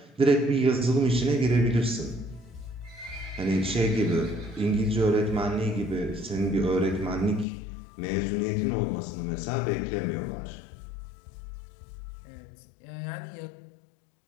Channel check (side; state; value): right; drops out; at 7.5 s